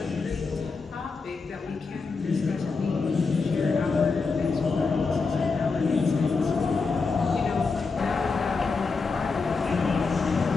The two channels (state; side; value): quieter; right; 4.5 dB